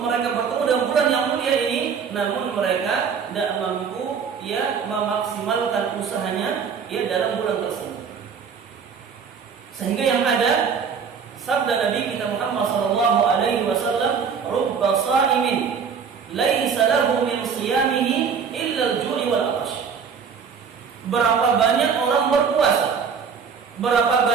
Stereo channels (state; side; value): quieter; left; 6.4 dB